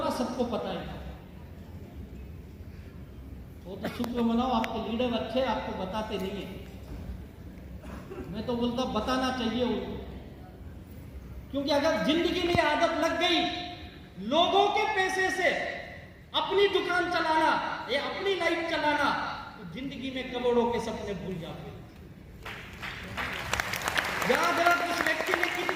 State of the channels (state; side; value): identical; both; correlation 1.00